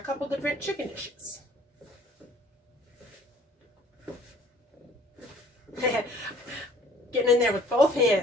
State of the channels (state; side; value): normal; both; correlation 0.54